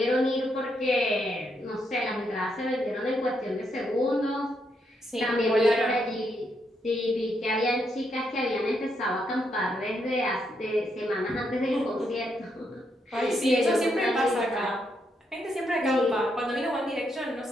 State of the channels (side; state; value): both; normal; correlation 0.78